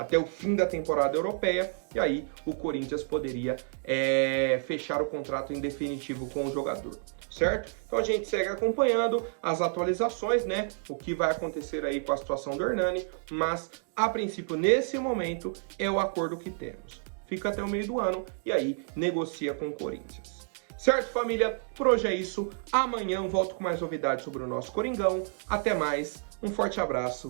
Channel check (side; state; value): left; silent; 58 dB below the other